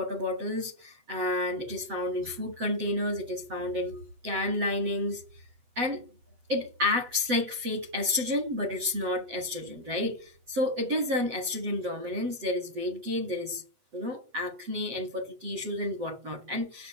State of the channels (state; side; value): late; left; 8.1 ms